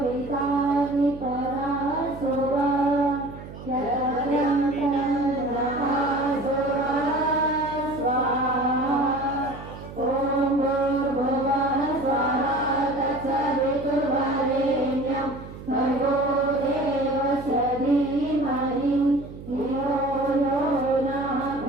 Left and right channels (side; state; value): right; noise; hum, 14 dB below the sound